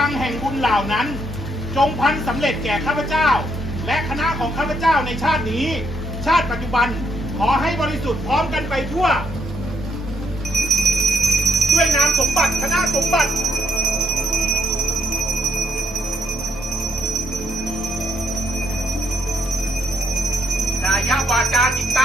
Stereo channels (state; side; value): normal; both; correlation 0.72